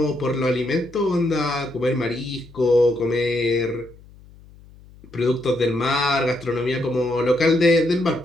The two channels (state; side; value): noise; left; hum, 23 dB below the sound